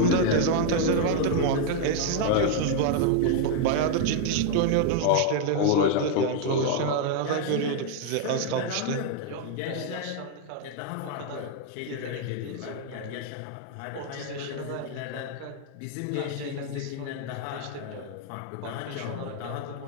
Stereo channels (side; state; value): both; different; correlation 0.00